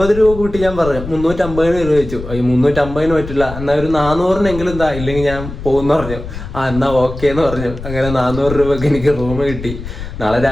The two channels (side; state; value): left; noise; rumble, 10 dB below the sound